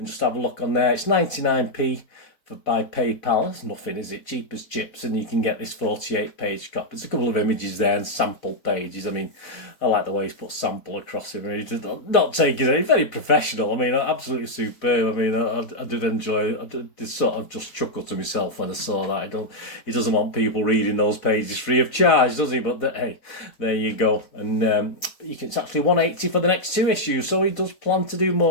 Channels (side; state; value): right; late; 4.1 ms